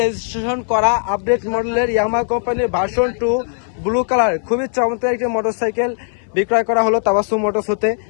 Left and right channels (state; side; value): silent; right; 60 dB below the other